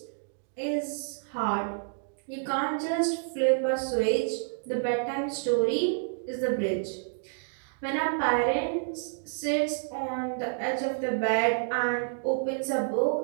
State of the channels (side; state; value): left; silent; digital silence